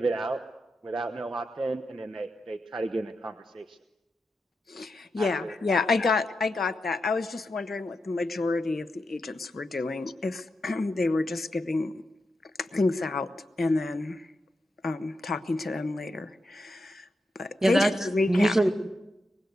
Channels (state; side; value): normal; both; correlation 0.87